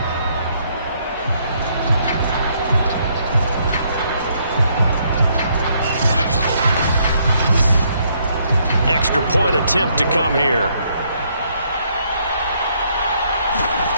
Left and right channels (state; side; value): inverted; both; correlation -0.70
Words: Extra point attempt to come here.